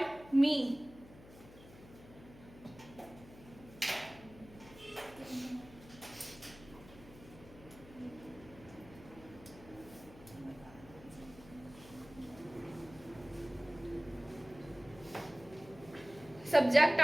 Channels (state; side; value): noise; left; hum, 19 dB below the sound